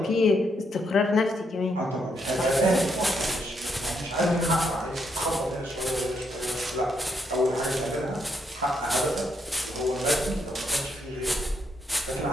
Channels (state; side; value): normal; both; correlation 0.77